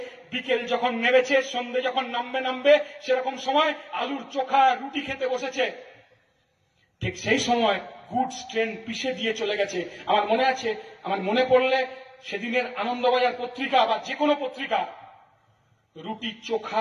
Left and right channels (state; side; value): identical; both; correlation 1.00